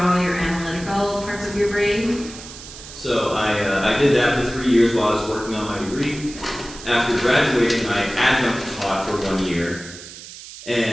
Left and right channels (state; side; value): noise; right; hiss, 15 dB below the sound